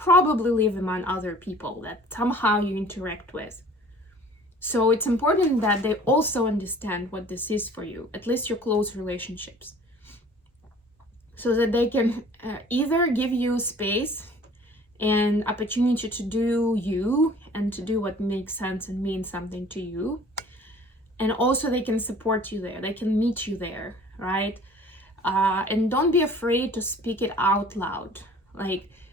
live among other people that somehow you interact with. So it's important that they also understand what this is for you, at least your close relationships, so that they can either give you space and opportunity to do you and to do what makes sense and means something to you. And also they can support you there, they can meet you there, right? And don't be afraid to speak it out loud. Like,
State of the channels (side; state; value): both; normal; correlation 0.50